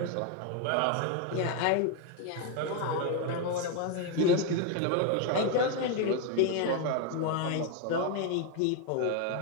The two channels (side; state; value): both; different; correlation 0.01